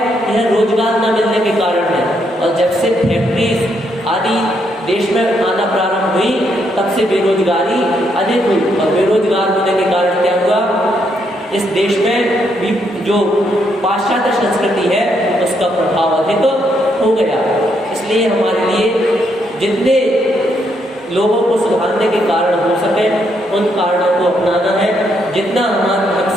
यह रोजगार न मिलने के कारण है। और जब से फैक्ट्रीज आदि देश में आना प्रारंभ हुई, तब से बेरोजगारी अधिक हुई और बेरोजगार होने के कारण क्या हुआ, इस देश में भी जो पाश्चात्य संस्कृति है उसका प्रभाव अधिक हो गया। इसलिए हमारे लिए जितने लोगों को सुधारने के कारण हो सके उन कारणों को अपनाना है। जितना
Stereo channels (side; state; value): both; normal; correlation 0.76